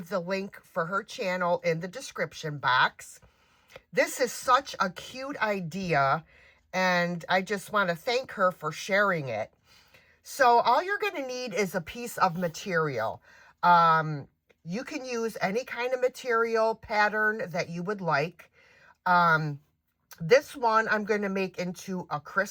the link for her channel in the description box. This is such a cute idea, and I just want to thank her for sharing it. So all you're going to need is a piece of material. You can use any kind of material pattern that you would like. This one I'm going to make into a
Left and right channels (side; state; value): both; identical; correlation 1.00